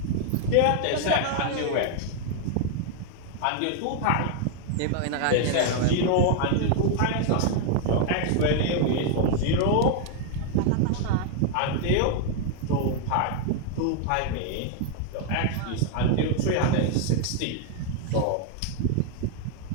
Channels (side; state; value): both; different; correlation 0.00